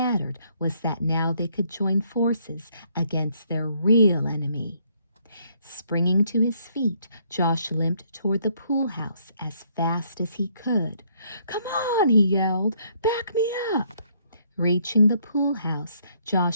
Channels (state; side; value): inverted; both; correlation -0.68